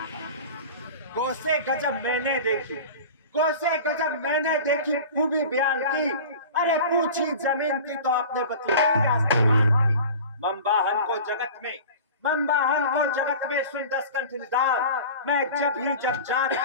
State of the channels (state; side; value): inverted; both; correlation -0.37